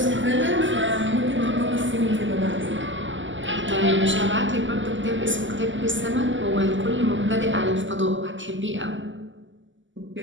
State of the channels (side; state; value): left; late; 0.55 ms